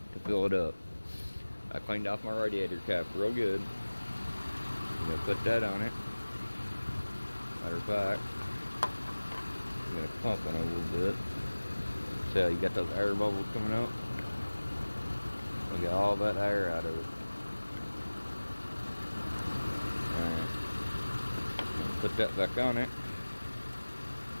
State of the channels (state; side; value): inverted; both; correlation -1.00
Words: to fill it up. I cleaned off my radiator cap real good. I'm gonna put that on it. Matter of fact, I'm gonna pump it a little bit. See how you got those air bubbles coming up? We got all that air out of it. Alright. Put that back on it.